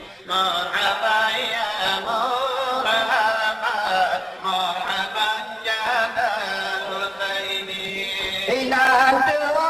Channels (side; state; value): both; identical; correlation 1.00